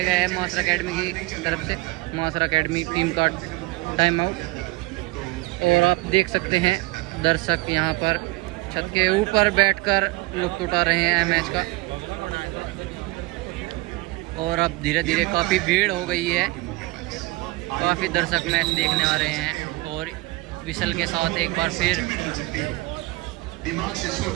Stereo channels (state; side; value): quieter; left; 22.1 dB